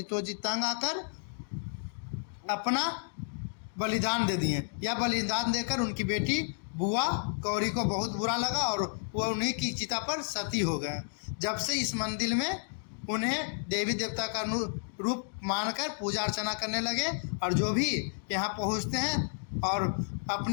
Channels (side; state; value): right; silent; digital silence